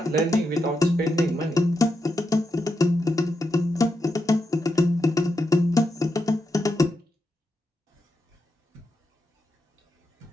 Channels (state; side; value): normal; both; correlation 0.85